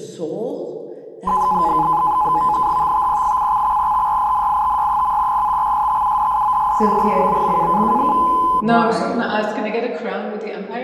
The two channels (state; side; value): identical; both; correlation 1.00